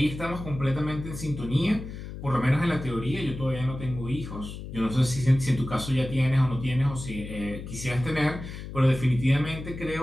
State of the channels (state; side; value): noise; left; hum, 10 dB below the sound